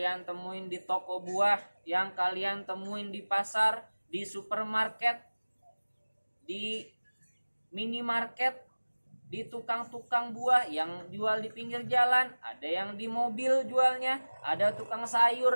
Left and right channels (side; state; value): both; inverted; correlation -1.00